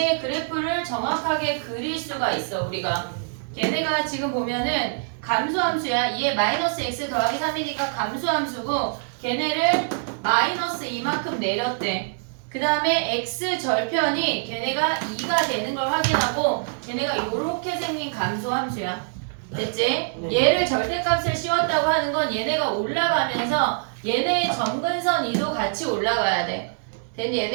그래프를 정확하게 그릴 수가 있어. 우리가 걔네가 지금 보면은 감소함수야. 2에 마이너스 x 더하기 3이니까 감소함수고 걔네를 마이너스 이만큼 내렸대. 그 다음에 x 절편이 걔네가 2가 되는 걸 확인하고 걔네가 이렇게 생긴 감소함수야. 됐지? 네. 얘를 절대값을 씌웠다고 하는 건 얘네가 올라가면서 얘네의 점근선 이도 같이 올라가야 돼. 됐니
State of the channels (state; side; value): silent; left; digital silence